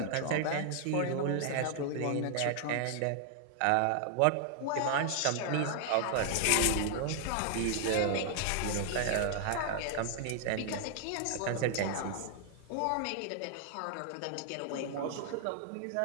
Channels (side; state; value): both; different; correlation 0.00